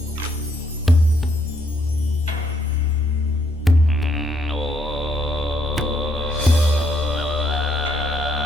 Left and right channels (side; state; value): both; normal; correlation 0.72